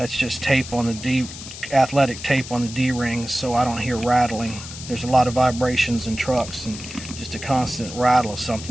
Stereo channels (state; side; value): noise; left; hiss, 12 dB below the sound